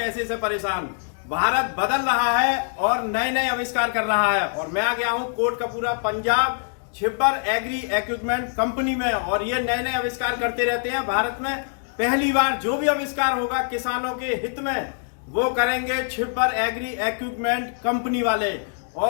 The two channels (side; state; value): right; silent; digital silence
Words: से परेशान। भारत बदल रहा है और नए नए आविष्कार कर रहा है और मैं आ गया हूं Kotkapura Punjab Chhibber agri equipment company में और ये नए नए आविष्कार करते रहते हैं। भारत में पहली बार जो भी आविष्कार होगा किसानों के हित में वो करेंगे छिब्बर एग्री इक्विपमेंट कंपनी वाले।